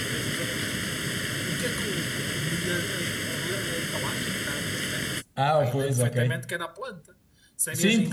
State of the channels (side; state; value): both; identical; correlation 1.00